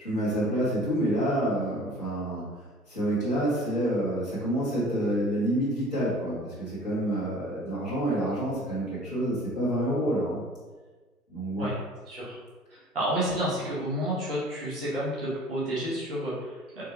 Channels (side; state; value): both; normal; correlation 0.49